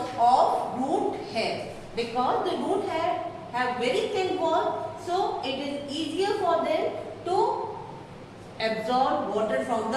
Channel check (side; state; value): both; identical; correlation 1.00